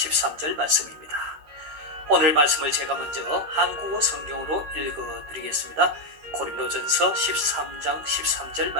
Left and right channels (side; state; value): left; late; 13 ms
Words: 말씀입니다. 오늘 말씀을 제가 먼저 한국어 성경으로 읽어드리겠습니다. 고린도전서 13장 13절